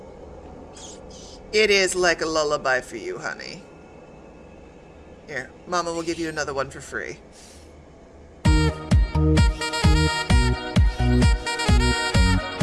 It is like a lullaby for you, honey. Here, Mama will give you another one for free.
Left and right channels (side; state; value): both; identical; correlation 1.00